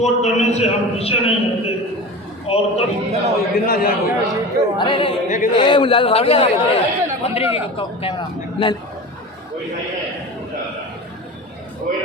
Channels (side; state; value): both; normal; correlation 0.32